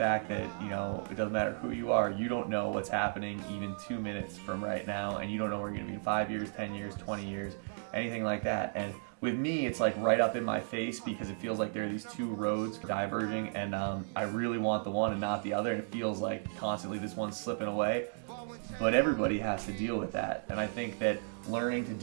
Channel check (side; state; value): left; silent; digital silence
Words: that, you know, it doesn't matter who you are, you don't know what's happening even 2 minutes from right now, and you don't know where you're going to be in 5 years, 10 years, 20 years, anything like that. And with me, it's like right up in my face because it feels like there are these two roads diverging, and I really want the one and not the other, and it feels like constantly this one's slipping away. But everybody has to deal with that, and I think that learning to